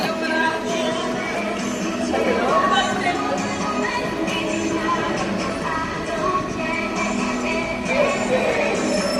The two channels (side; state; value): both; identical; correlation 1.00